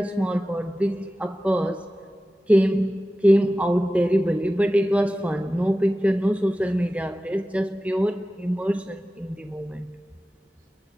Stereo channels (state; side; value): normal; both; correlation 0.95